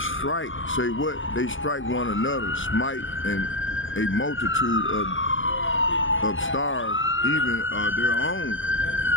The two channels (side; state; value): right; late; 0.57 ms